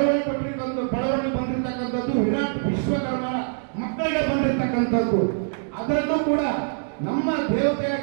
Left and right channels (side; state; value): left; silent; digital silence